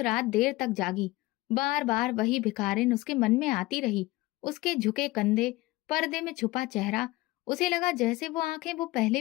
देर तक जागी, बार बार वही भिखारिन उसके मन में आती रही, उसके झुके कंधे, पर्दे में छुपा चेहरा। उसे लगा जैसे वो आंखें वो पहले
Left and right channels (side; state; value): right; quieter; 19.7 dB